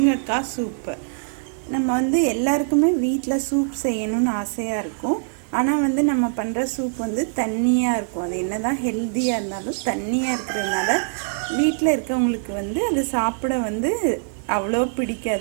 சூப்பு. நம்ம எல்லாருக்குமே வீட்டில் சூப் செய்யணும்னு ஆசையாக இருக்கும். ஆனால் நம்ம பண்ணுற சூப் தண்ணியாக இருக்கும். அது என்ன தான் ஹெல்த்தியாக இருந்தாலும் தண்ணியாக இருக்கிறதுனால வீட்டில் இருக்கவங்களுக்கு அது சாப்பிட அவ்வளோ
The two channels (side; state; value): left; silent; digital silence